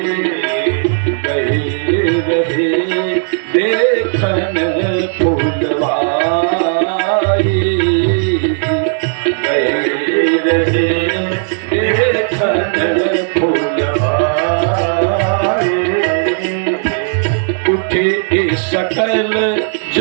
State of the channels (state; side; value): silent; left; digital silence